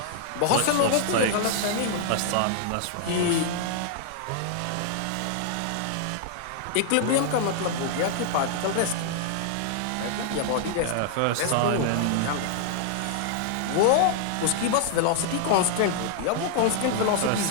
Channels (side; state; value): both; different; correlation 0.00